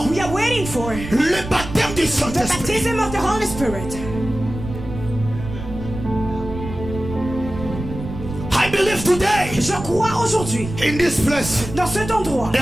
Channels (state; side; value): noise; right; rumble, 9 dB below the sound